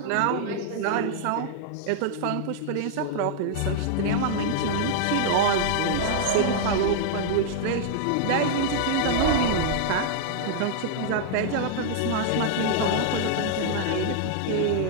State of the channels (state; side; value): different; both; correlation -0.01